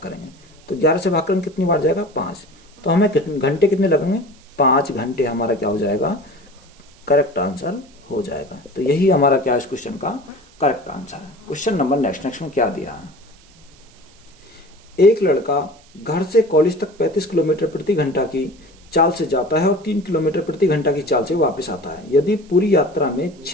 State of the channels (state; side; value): noise; right; hiss, 28 dB below the sound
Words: करेंगे। तो 11 से भाग करेंगे कितनी बार जाएगा? 5। तो हमें घंटे कितने लगेंगे? 5 घंटे हमारा क्या हो जाएगा? करेक्ट आंसर हो जाएगा। तो यही हमारा क्या है इस क्वेश्चन का करेक्ट आंसर है। क्वेश्चन नंबर नेक्स्ट में क्या दिया है? एक लड़का घर से कॉलेज तक 35 किलोमीटर प्रति घंटा की चाल से जाता है और 3 किलोमीटर प्रति घंटा की चाल से वापस आता है। यदि पूरी यात्रा में